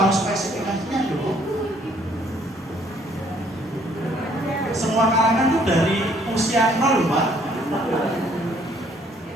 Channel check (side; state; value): both; normal; correlation 0.63